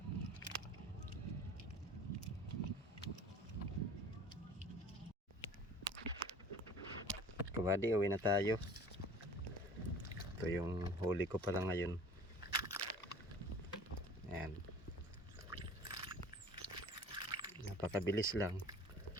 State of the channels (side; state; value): both; normal; correlation 0.45